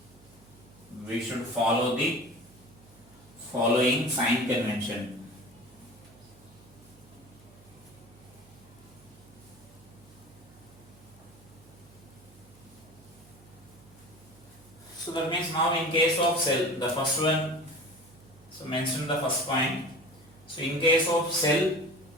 We should follow the following sign convention. So that means now in case of cell, the first one, so mention the first point. So in case of cell,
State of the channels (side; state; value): right; noise; hum, 25 dB below the sound